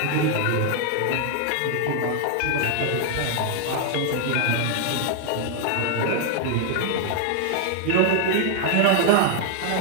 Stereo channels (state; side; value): different; both; correlation 0.00